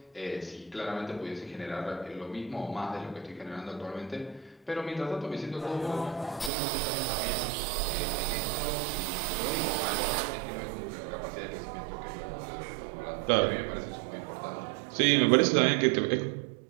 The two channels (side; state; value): left; drops out; at 6.5 s